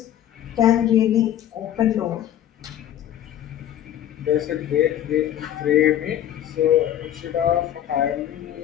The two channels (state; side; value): quieter; right; 11.2 dB